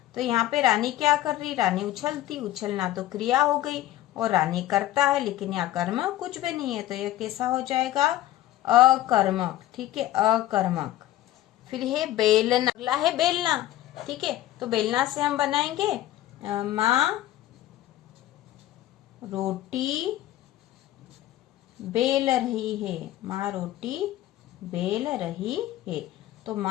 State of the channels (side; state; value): right; quieter; 14.4 dB